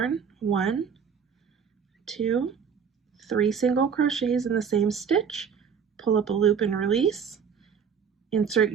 1, 2, 3 single crochets in the same stitch. Pull up a loop and release. Insert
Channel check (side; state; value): left; quieter; 6.8 dB